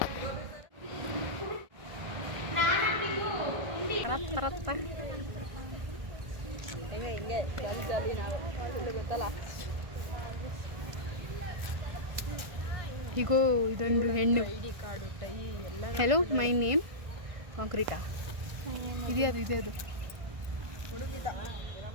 ಹಿಂಗೆ ಜಾಲಿ ನಾವು ಗೊತ್ತಲ್ಲ. ಹೀಗೋ ಇದೊಂದು ಹೆಣ್ಣು. ಹೆಲೋ ಮೈ ನೇಮ್ ಕಾಂಕ್ರೀಟಾ. ಇದೆ ಅದು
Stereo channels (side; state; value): left; late; 1.5 ms